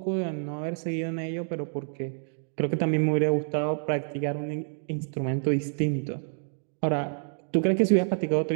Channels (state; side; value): silent; left; 59 dB below the other